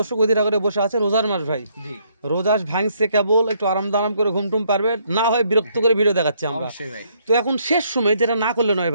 অধীরা করে বসে আছে, রোজার মাস ভাই, জি রোজাস ভাঙছে কেবল, একটু আরাম দারাম করে ঘুমটুম পারবে না হয় বিরক্ত করে ভিডিও দেখাচ্ছি আমরা। অবশ্যই ভাই। তো এখন শেষ সময় যেটা না করলে নয়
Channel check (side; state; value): both; inverted; correlation -0.70